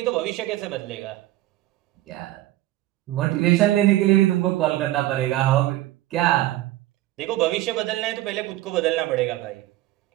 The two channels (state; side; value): quieter; left; 15.9 dB